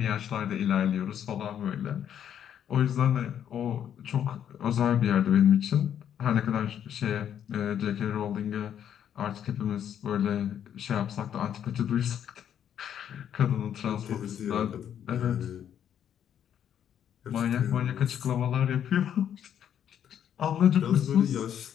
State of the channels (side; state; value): right; quieter; 9.5 dB